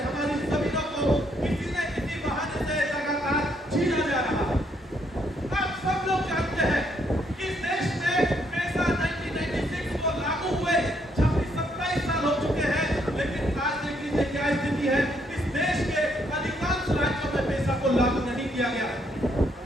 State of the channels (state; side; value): normal; both; correlation 0.72